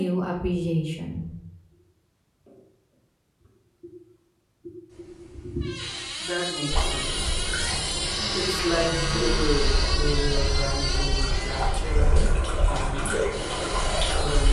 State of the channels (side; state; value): both; identical; correlation 1.00